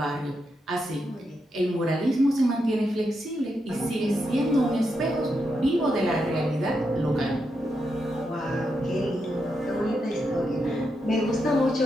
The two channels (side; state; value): both; normal; correlation 0.84